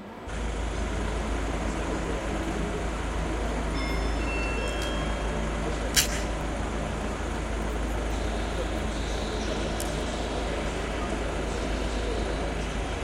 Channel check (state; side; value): identical; both; correlation 1.00